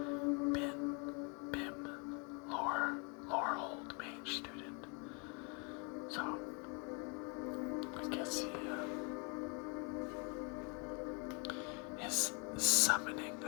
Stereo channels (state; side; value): quieter; right; 34.5 dB